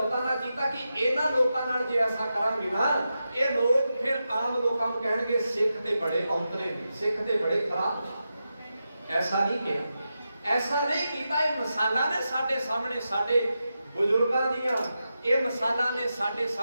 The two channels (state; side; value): inverted; both; correlation -0.89